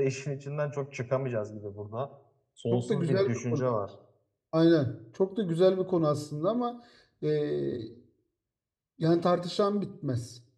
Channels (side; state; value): both; identical; correlation 1.00